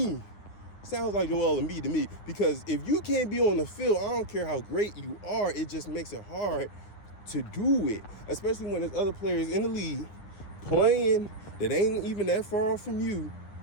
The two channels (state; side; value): late; right; 9.7 ms